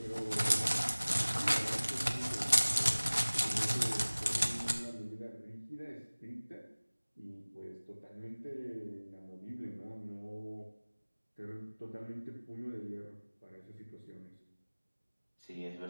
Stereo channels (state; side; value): inverted; both; correlation -1.00